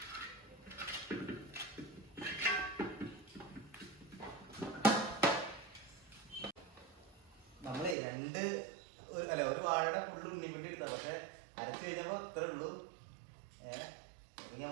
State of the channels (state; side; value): drops out; left; at 8.0 s